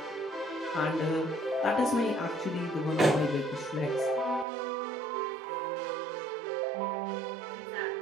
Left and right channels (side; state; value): left; drops out; at 4.5 s